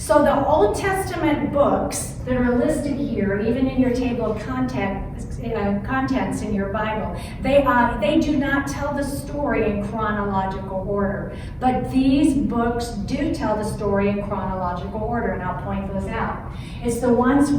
the Old Testament books that are listed here, even in your table of contents in your Bible, they do not tell the story in chronological order. But these books do tell the story in chronological order, and I'll point those out. It's the ones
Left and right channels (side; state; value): both; identical; correlation 1.00